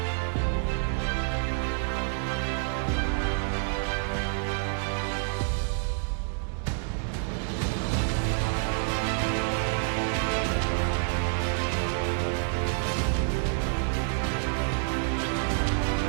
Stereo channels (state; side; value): silent; left; 55 dB below the other